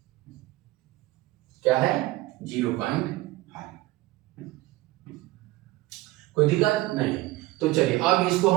क्या है 0.5, कोई दिक्कत नहीं। तो चलिए अब इसको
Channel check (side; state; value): left; quieter; 18.5 dB